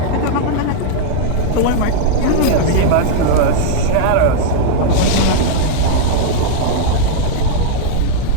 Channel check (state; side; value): different; both; correlation -0.01